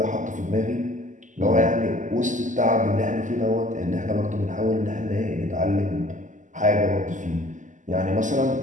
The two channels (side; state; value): left; late; 0.37 ms